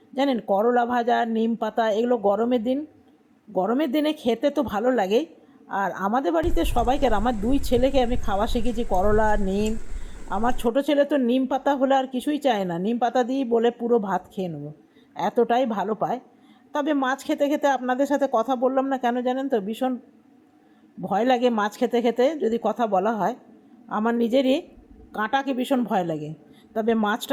জানেন, করলা ভাজা, নিম পাতা, এগুলো গরমের দিনে খেতে তো ভালো লাগেই। আর আমাদের বাড়িতে সবাইকে, আমার 2 ছেলেকে আমি খাওয়া শিখেছি করলা, নিম। আমার ছোট ছেলে তো নিম পাতা হলে আর কিছুই চায় না, নিম পাতা দিয়েই বলে পুরো ভাত খেয়ে নেবো, এতটাই ভালো পায়। তবে মাছ খেতে খেতে আপনাদের সাথে কথা বললাম না কেন জানেন তো? ভীষণ ভয় লাগে মাছ খেতে খেতে যদি কথা বলা হয়। আমার নিজেরই কাঁটাকে ভীষণ ভয় লাগে। তবে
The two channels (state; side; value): identical; both; correlation 1.00